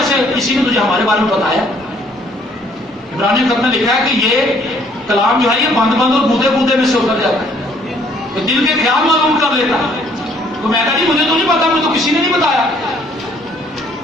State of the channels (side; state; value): both; normal; correlation 0.63